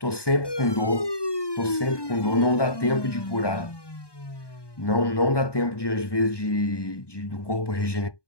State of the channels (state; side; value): late; right; 1.2 ms